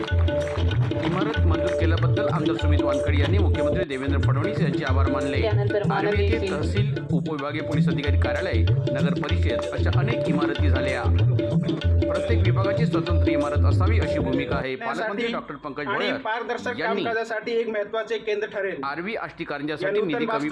इमारत मंजूर केल्याबद्दल आमदार सुमित वानखडे यांनी मुख्यमंत्री देवेंद्र फडणवीस यांचे आभार मानले। आर्वी येथे तहसील, उपविभागीय पोलीस अधिकारी कार्यालय, नगर परिषद अशा अनेक इमारती झाल्या। प्रत्येक विभागाची स्वतंत्र इमारत असावी अशी भूमिका आहे। पालकमंत्री डॉक्टर पंकज भोयर यांनी एक महत्त्वाचे केंद्र ठरेल। आर्वी आष्टी कारंजासाठी निधी कमी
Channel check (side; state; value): both; identical; correlation 1.00